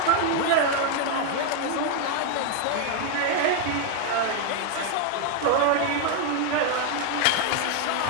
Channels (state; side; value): different; both; correlation 0.00